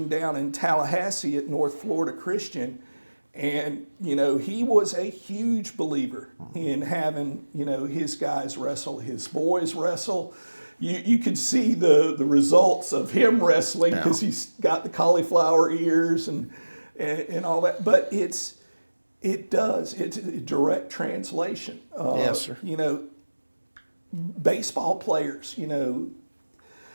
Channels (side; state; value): both; inverted; correlation -1.00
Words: down in Tallahassee at North Florida Christian. And, he was a huge believer in having, his guys wrestle, his boys wrestle. You could see the results of him wrestling because he's got the cauliflower ears and all that. But it's a direct translation. Yes, sir. Baseball players,